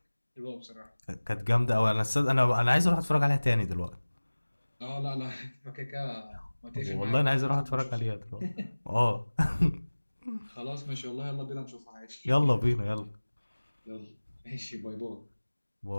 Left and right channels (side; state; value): both; inverted; correlation -1.00